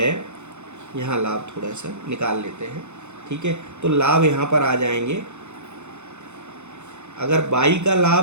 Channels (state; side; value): late; left; 0.83 ms